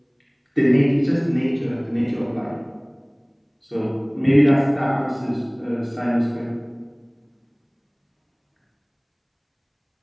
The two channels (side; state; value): both; identical; correlation 1.00